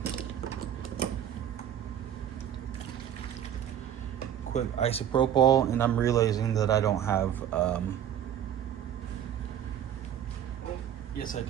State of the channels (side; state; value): left; quieter; 9.9 dB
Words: Quick isopropyl, and I'm realizing that I don't have yes I